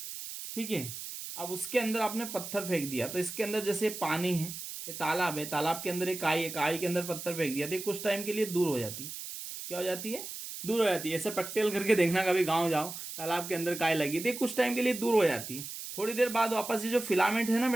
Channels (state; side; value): noise; right; hiss, 9 dB below the sound